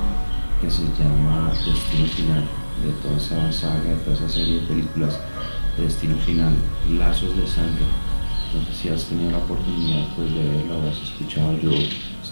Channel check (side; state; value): both; inverted; correlation -1.00